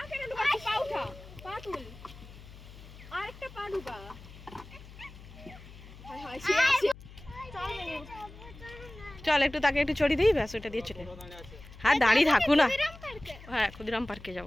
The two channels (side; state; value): left; noise; hum, 18 dB below the sound